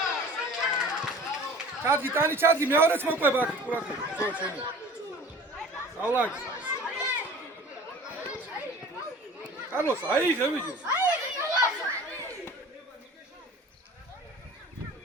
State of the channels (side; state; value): both; normal; correlation 0.44